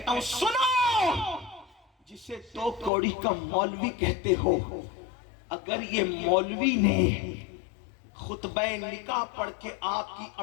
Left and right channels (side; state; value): right; drops out; at 2.9 s